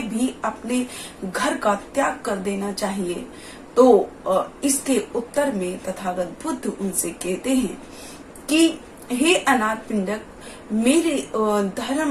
भी अपने घर का त्याग कर देना चाहिए? तो इसके उत्तर में तथागत बुद्ध उनसे कहते हैं कि हे अनाथ पिंडक, मेरे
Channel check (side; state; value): both; identical; correlation 1.00